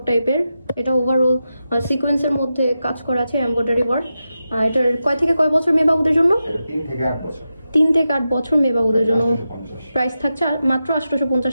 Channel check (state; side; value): inverted; both; correlation -0.90